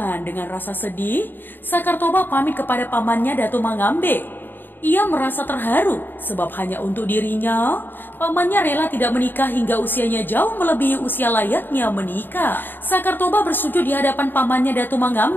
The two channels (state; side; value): late; right; 0.094 ms